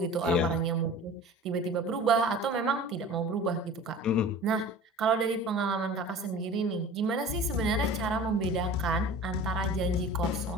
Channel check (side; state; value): both; normal; correlation 0.40